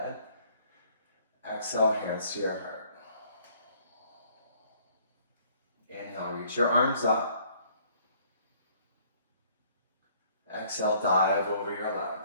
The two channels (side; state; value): both; inverted; correlation -0.60